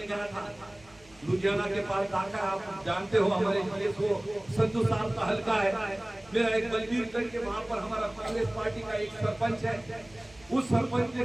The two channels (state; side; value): noise; right; hum, 27 dB below the sound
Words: गया था, लुधियाना के पास दाखा, आप जानते हो हमारे जिले को संधू साहब का हल्का है। मेरा एक बलबीरगंज के वहां पर हमारा कांग्रेस पार्टी का एक सरपंच है, उस सरपंच ने